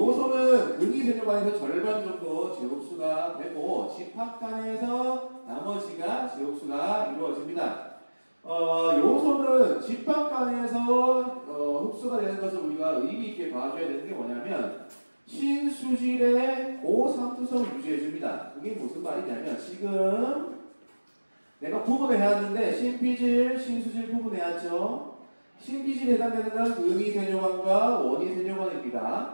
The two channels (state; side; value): inverted; both; correlation -1.00